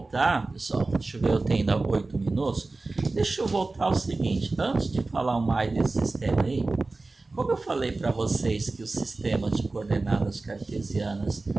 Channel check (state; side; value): quieter; left; 3.4 dB